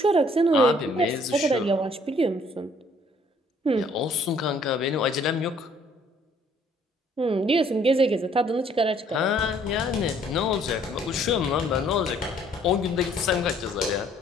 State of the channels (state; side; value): normal; both; correlation 0.61